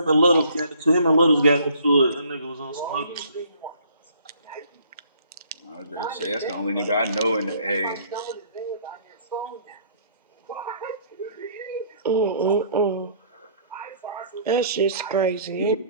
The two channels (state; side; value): inverted; both; correlation -0.58